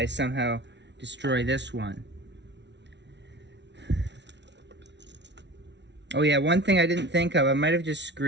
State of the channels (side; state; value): left; late; 0.51 ms